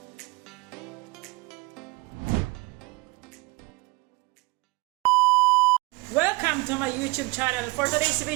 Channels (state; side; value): quieter; left; 24.8 dB